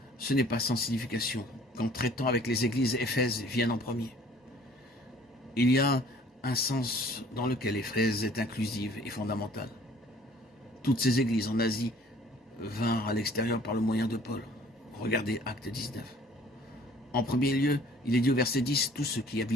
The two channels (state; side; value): normal; both; correlation 0.54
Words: ce n'est pas sans signification qu'en traitant avec les églises, Éphèse vienne en premier. Il y a un sens dans lequel Éphèse est inclusive et fondamentale. Toutes ces églises en Asie vinrent à l'extérieur par le moyen de Paul. Regardez Acte 19. En premier lieu, il est dit au verset 10, tous ceux qui